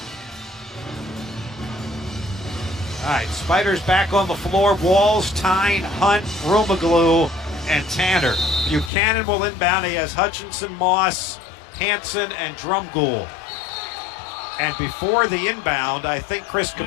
All right, Spiders back on the floor. Walls, Tyne, Hunt, Rumaglu, and Tanner. Buchanan will inbound. He has Hutchinson, Moss, Hanson, and Drumgoole. And before the inbound, I think Chris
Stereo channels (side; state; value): right; drops out; at 8.9 s